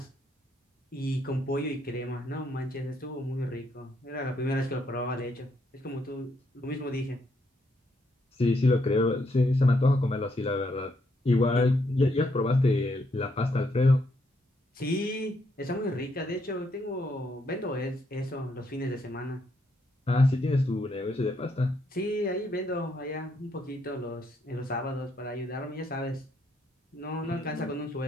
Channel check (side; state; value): both; normal; correlation 0.75